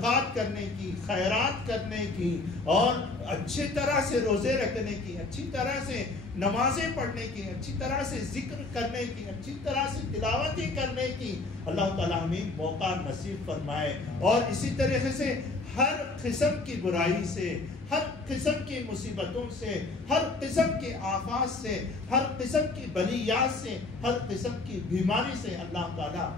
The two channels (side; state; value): right; quieter; 3.4 dB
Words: کرنے کی، خیرات کرنے کی، اور اچھی طرح سے روزے رکھنے کی، اچھی طرح سے نمازیں پڑھنے کی، اچھی طرح سے ذکر کرنے کی، اچھی طرح سے تلاوتیں کرنے کی اللہ تعالیٰ ہمیں موقع نصیب فرمائے۔ اور اسی طریقے سے ہر قسم کی برائی سے، ہر قسم کی مصیبتوں سے، ہر قسم کے آفات سے، ہر قسم کی بلیات سے، ہر قسم کی بیماری سے اللہ تعالیٰ